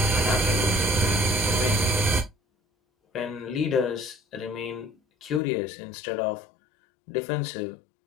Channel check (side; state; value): right; drops out; at 5.4 s